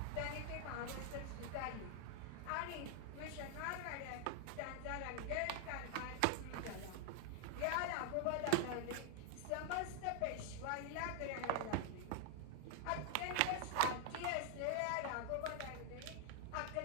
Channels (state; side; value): different; both; correlation 0.00